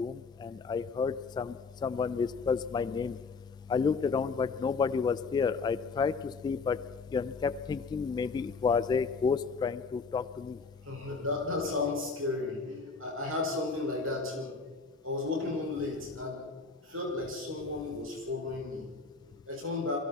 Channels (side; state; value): right; quieter; 4.5 dB